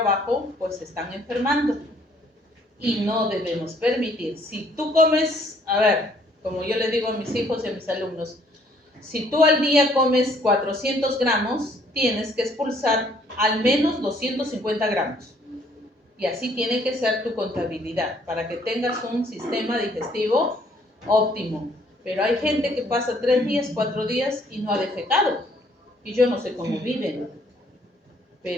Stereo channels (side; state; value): both; normal; correlation 0.63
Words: pues se están enfermando. Y no debemos permitir. Si tú comes, a ver, como yo le digo a mis hijos y a mis alumnos, si tú al día comes 400 gramos, tienes que expulsar al menos 250 gramos. Y así tiene que ser tu contabilidad, para que tengas un sistema digestivo óptimo. Pero hay gente que pasa 3 días, 4 días y no ha defecado. Y yo no sé cómo viven.